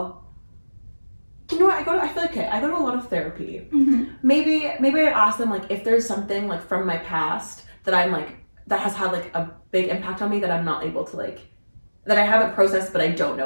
You know what? I feel like I go to a lot of therapy. Maybe I ask them like if there's something like from my past that I'm like that has had like a big impact on me that I'm not able to like, that I haven't processed but I don't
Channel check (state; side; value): inverted; both; correlation -1.00